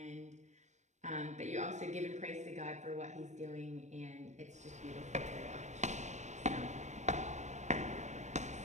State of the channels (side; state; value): left; late; 0.34 ms